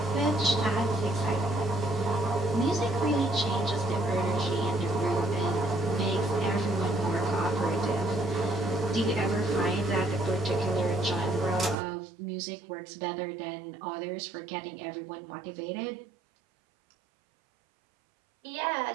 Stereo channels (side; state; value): left; drops out; at 11.8 s